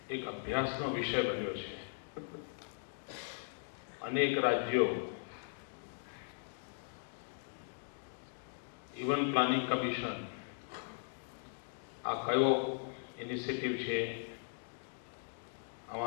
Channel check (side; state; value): right; silent; digital silence